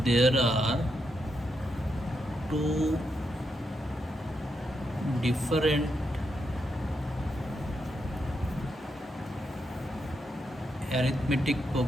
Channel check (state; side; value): normal; both; correlation 0.83